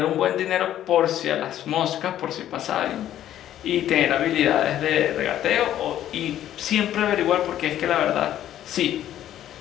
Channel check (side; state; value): right; quieter; 11.9 dB